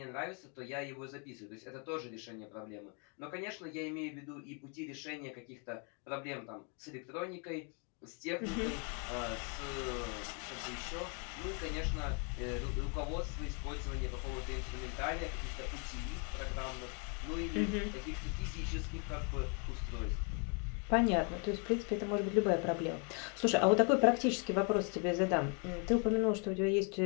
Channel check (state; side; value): quieter; right; 37.5 dB